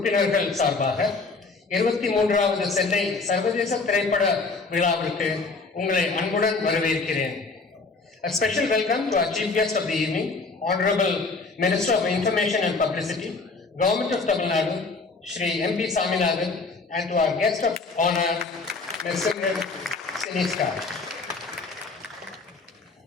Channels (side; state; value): right; quieter; 4.0 dB